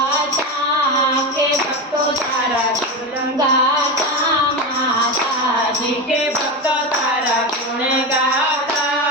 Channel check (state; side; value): normal; both; correlation 0.18